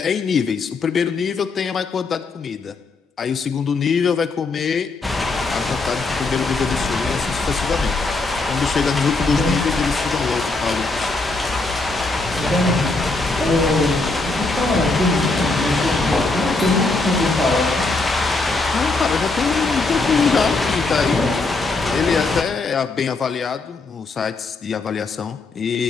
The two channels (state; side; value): quieter; right; 3.6 dB